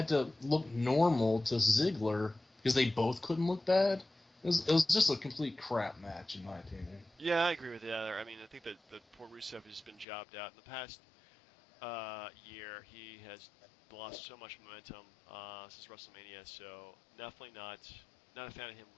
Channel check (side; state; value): right; drops out; at 10.1 s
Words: to look normal to Ziggler because they both couldn't look bad. It was just a complete crap match, in my opinion. Yeah, I agree with you there. I mean, I think that poor Rusev has been jobbed out. In the past year, he has lost so much momentum since WrestleMania, so definitely not a fan of him